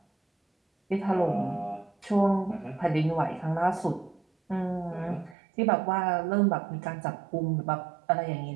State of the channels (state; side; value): drops out; left; at 5.4 s